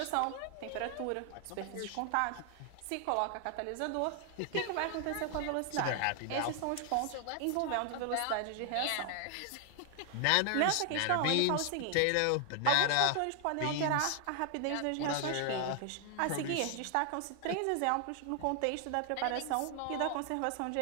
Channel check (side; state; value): both; different; correlation 0.00